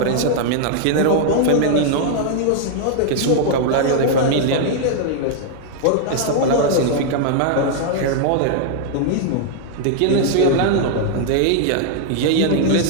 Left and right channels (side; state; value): both; different; correlation -0.01